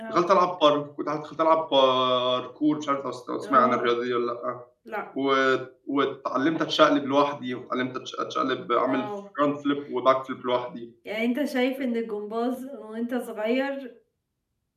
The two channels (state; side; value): identical; both; correlation 1.00